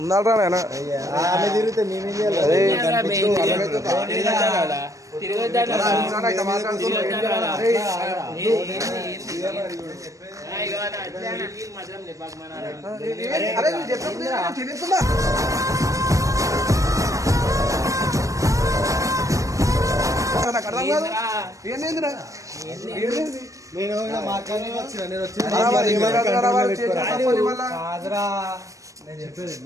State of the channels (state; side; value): late; left; 0.16 ms